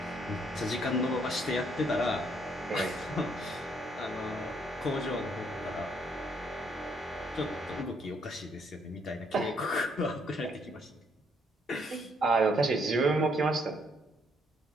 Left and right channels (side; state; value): both; normal; correlation 0.70